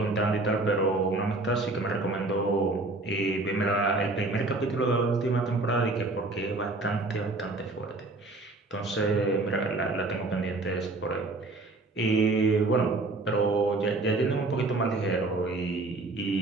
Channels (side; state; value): left; quieter; 3.1 dB